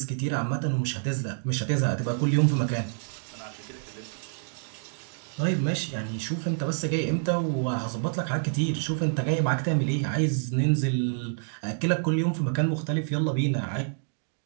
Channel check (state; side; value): silent; left; digital silence